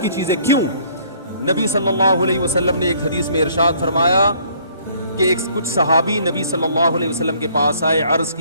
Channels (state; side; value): inverted; both; correlation -0.61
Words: کی چیز ہے. کیوں؟ نبی صلی اللہ علیہ وسلم نے ایک حدیث میں ارشاد فرمایا کہ کچھ صحابی نبی صلی اللہ علیہ وسلم کے پاس آئے, عرض